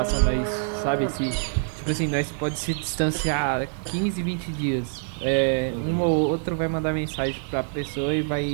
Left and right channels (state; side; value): silent; left; digital silence